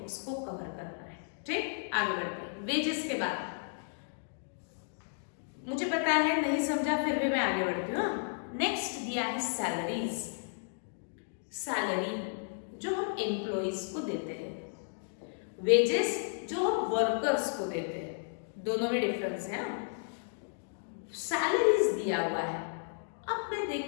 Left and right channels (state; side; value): silent; right; digital silence